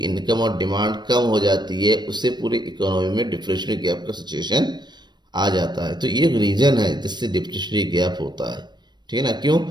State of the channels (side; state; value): left; late; 0.21 ms